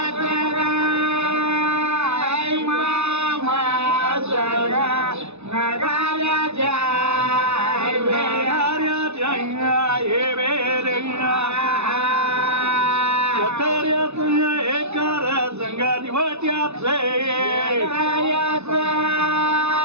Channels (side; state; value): left; late; 0.81 ms